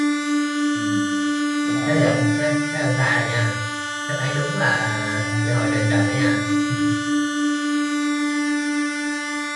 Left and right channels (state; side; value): identical; both; correlation 1.00